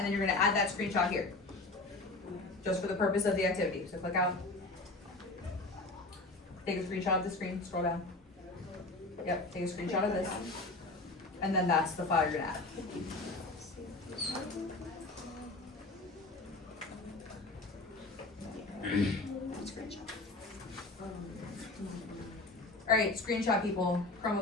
then you're gonna add that screenshot here. Just for the purpose of the activity. So click out, take a screenshot of the screen, scroll down. Yep, take a screenshot of this. And then that's the file you're gonna add. All right, screenshot people,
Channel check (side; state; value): right; quieter; 3.1 dB